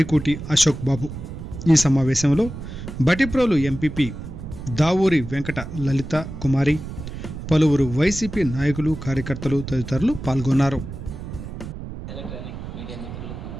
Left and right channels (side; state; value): right; noise; rumble, 10 dB below the sound